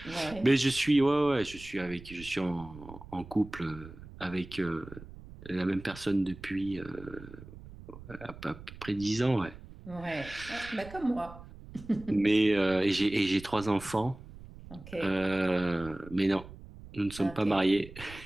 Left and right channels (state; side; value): noise; right; rumble, 16 dB below the sound